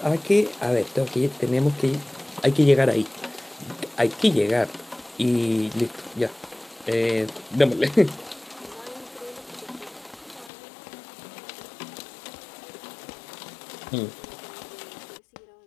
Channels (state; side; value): drops out; right; at 10.5 s